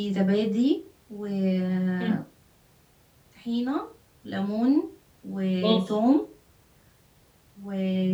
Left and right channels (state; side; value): identical; both; correlation 1.00